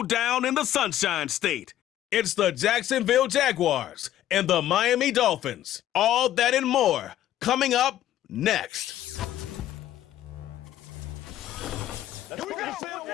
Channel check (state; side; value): quieter; right; 12.6 dB